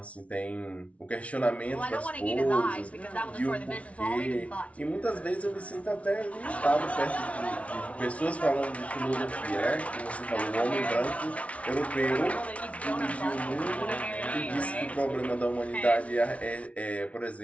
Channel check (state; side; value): late; right; 0.064 ms